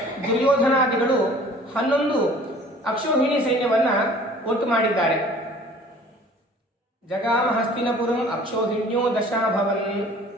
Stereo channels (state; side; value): normal; both; correlation 0.50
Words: ದುರ್ಯೋಧನಾದಿಗಳು 11 ಅಕ್ಷೋಹಿಣಿ ಸೈನ್ಯವನ್ನ ಒಟ್ಟು ಮಾಡಿದ್ದಾರೆ. ಜಗಾಮ ಹಸ್ತಿನಪುರಂ ಅಕ್ಷೋಹಿಣ್ಯೋ ದಶಾಭವನ್